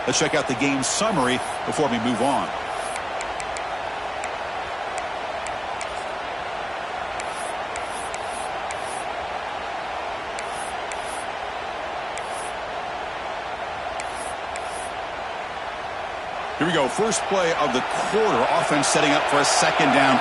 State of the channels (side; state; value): both; identical; correlation 1.00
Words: Let's check out the game summary before we move on. Here we go. First play of the quarter. Offense setting up for a second down